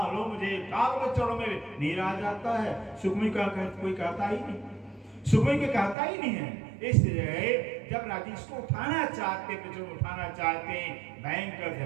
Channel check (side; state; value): left; drops out; at 6.0 s